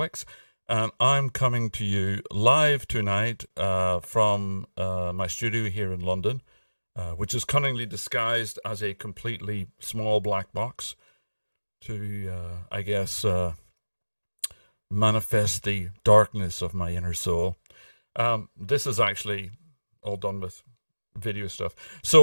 and I'm coming to you live tonight from my studio here in London, which is cunningly disguised as a completely small black box to, I guess, manifest the darkness of my inner soul. This is actually all done with video stuff.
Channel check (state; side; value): inverted; both; correlation -1.00